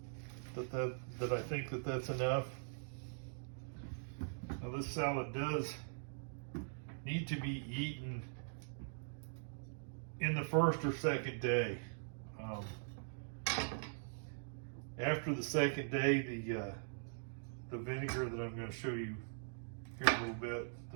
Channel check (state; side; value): silent; left; digital silence